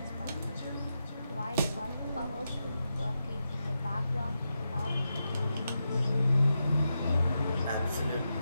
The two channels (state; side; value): inverted; both; correlation -0.87